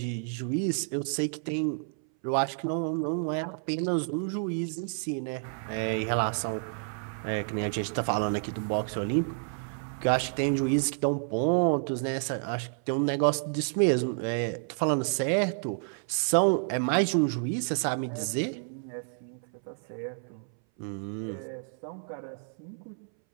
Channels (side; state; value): left; silent; 58 dB below the other